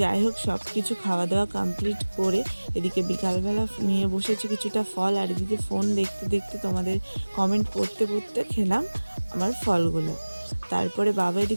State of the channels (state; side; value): inverted; both; correlation -1.00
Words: যাই হোক, সব কিছু খাওয়া দাওয়া কমপ্লিট করে এদিকে বিকালবেলা নিয়ে বসেছি কিছুটা ফল, আর এদিকে ফোন দেখতে দেখতে তোমাদের কমেন্ট পড়তে পড়তে খেলাম আমার ফলগুলো। তারপরে বাবা